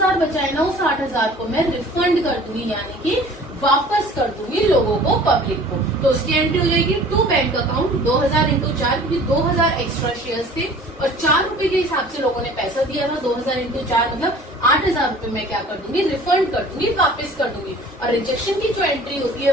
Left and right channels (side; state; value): both; normal; correlation 0.47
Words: बचा है ना, उस 8,000 को मैं रिफंड कर दूंगी, यानी कि वापस कर दूंगी लोगों को, पब्लिक को। तो उसकी एंट्री हो जाएगी टू बैंक अकाउंट 2,000 इंटू 4, क्योंकि 2,000 एक्स्ट्रा शेयर्स थे और 4 रुपए के हिसाब से लोगों ने पैसा दिया था। 2,000 इंटू 4 मतलब 8,000 रुपए मैं क्या कर दूंगी, रिफंड कर दूंगी, वापस कर दूंगी। और रिजेक्शन की जो एंट्री होती है